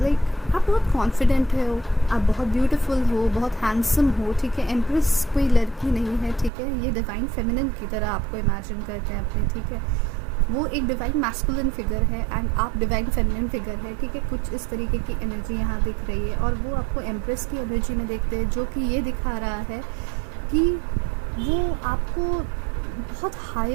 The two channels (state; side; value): drops out; left; at 6.5 s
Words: आप बहुत कॉन्फिडेंट हो, आप बहुत ब्यूटीफुल हो, बहुत हैंडसम हो। ठीक है, एम्प्रेस कोई लड़की नहीं है। ठीक है, ये डिवाइन फेमिनिन की तरह आपको इमेजिन करते हैं अपने। ठीक है, वो एक डिवाइन मैस्कुलिन फिगर है एंड आप डिवाइन फेमिनिन फिगर है। ठीक है, कुछ इस तरीके की एनर्जी यहाँ दिख रही है और वो आपको एम्प्रेस की एनर्जी में देखते हैं, जो कि ये दिखा रहा है कि वो आपको बहुत